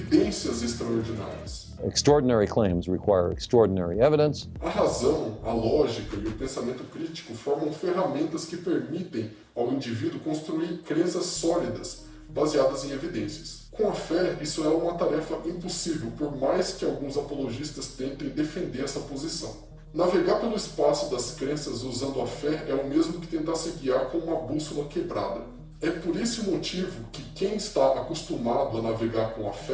extraordinárias. Extraordinary claims require extraordinary evidence. A razão, a lógica e o pensamento crítico formam ferramentas que permitem ao indivíduo construir crenças sólidas, baseadas em evidências. Com a fé, isso é uma tarefa impossível, por mais que alguns apologistas tentem defender essa posição. Navegar pelo espaço das crenças usando a fé é o mesmo que tentar se guiar com uma bússola quebrada. É por esse motivo que quem está acostumado a navegar com a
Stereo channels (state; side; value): identical; both; correlation 1.00